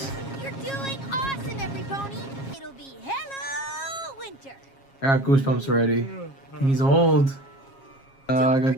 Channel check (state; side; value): late; right; 7.4 ms